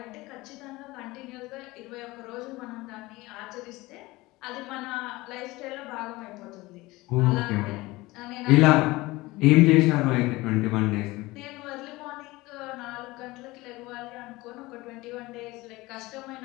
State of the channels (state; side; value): quieter; right; 20.6 dB